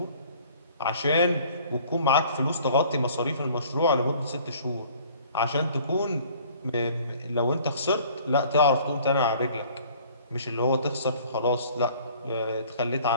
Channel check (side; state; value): both; inverted; correlation -0.53